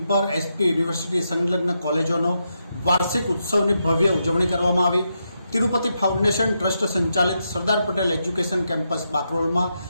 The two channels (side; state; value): both; inverted; correlation -0.84